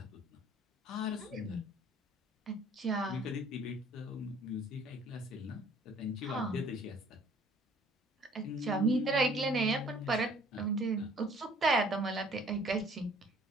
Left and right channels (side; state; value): both; normal; correlation 0.56